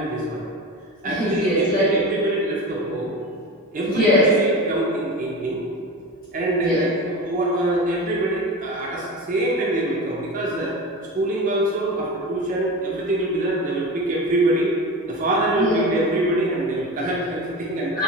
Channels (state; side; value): normal; both; correlation 0.28